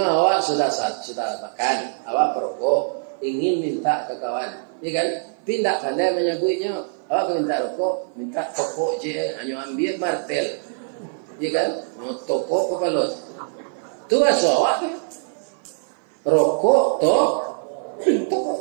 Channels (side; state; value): left; silent; 57 dB below the other